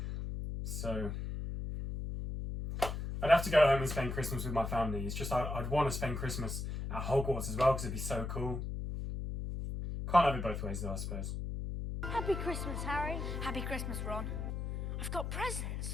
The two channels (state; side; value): noise; left; hum, 4 dB below the sound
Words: So I'd have to go home and spend Christmas with my family. It's just I'd want to spend Christmas at Hogwarts as well because it'd be so cool. Can't have it both ways though, I suppose. Happy Christmas, Harry. Happy Christmas, Ron. I've got